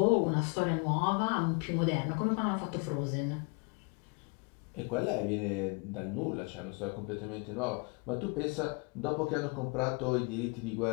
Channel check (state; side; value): quieter; right; 32.2 dB